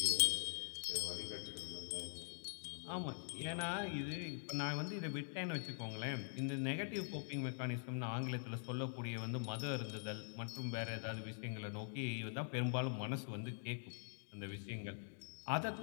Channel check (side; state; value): right; silent; digital silence